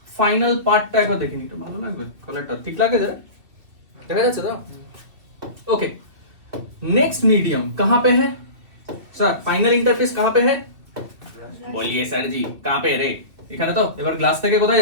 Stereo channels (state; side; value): late; left; 2.8 ms